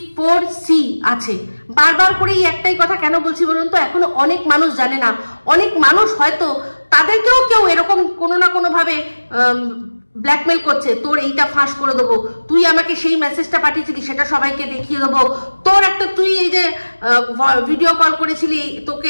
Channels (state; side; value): inverted; both; correlation -1.00